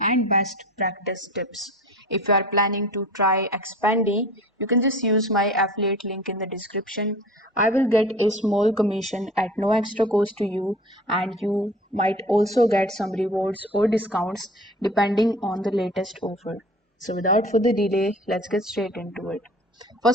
and best practice tips. If you are planning to try Expandy, you can just use my affiliate link in the description. I will get a small commission at no extra cost to you, and you might also get some rewards or discounts depending on the latest offer. So without further delay, let's get straight into it.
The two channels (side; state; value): both; normal; correlation 0.41